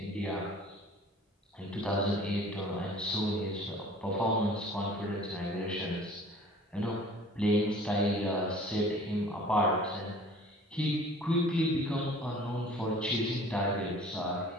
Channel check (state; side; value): normal; both; correlation 0.48